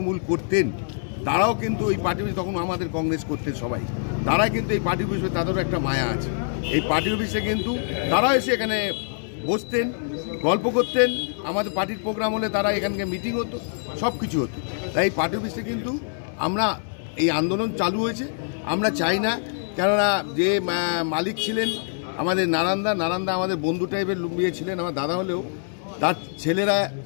করতেন তারাও কিন্তু এই পার্টি অফিস, তখন আমাদের কংগ্রেস করতেন সবাই, তারা কিন্তু এই পার্টি অফিসে তাদেরও একটা মায়া আছে। এই পার্টি অফিসে কিন্তু তারাও এসে এখানে বসতেন, গল্প করতেন। আমাদের পার্টির প্রোগ্রাম হলে তারা এখানকে মিটিং হতো, সব কিছু হতো। তাই এই পার্টি অফিসে কিন্তু আমরা এই আন্দোলন চালু হয়েছে। আমরা চাই না, কেননা যে মালিক ছিলেন আমাদের নারান্দা আমাদের বন্ধু টাইপের লুম্বিয়ে ছিলেন, আমার দাদা হলেও তার ছেলেরা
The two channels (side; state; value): right; silent; digital silence